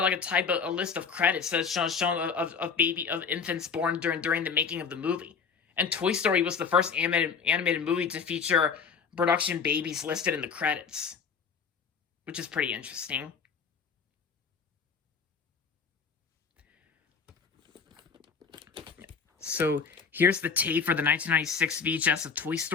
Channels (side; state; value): right; quieter; 6.0 dB